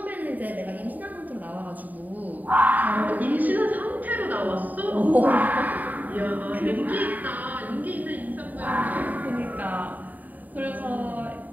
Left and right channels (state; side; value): late; left; 0.082 ms